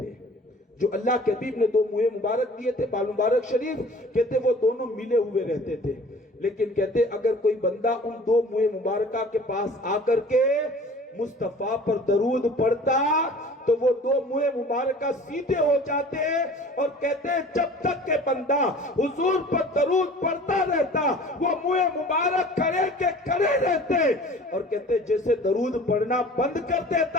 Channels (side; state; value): both; normal; correlation 0.46